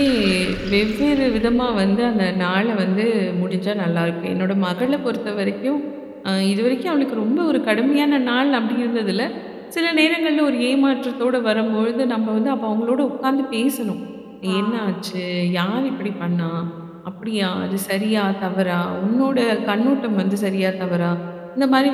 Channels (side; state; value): both; identical; correlation 1.00